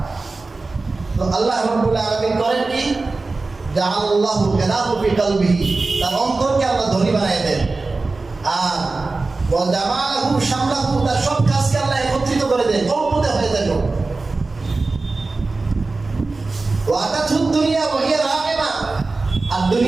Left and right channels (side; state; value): left; quieter; 3.6 dB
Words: তো আল্লাহ রাব্বুল আলামিন করেন কি, জাআলাল্লাহু গানাহু ফি কলবিহি, তার অন্তরকে আল্লাহ ধনী বানায় দেন। আর ওয়া জামালাহু শামলাহু, তার সব কাজকে আল্লাহ একত্রিত করে দেন, অল্পতে হয়ে যায়। ওয়া আতাতহু দুনিয়া ওয়া হিয়া রাগিমা, আর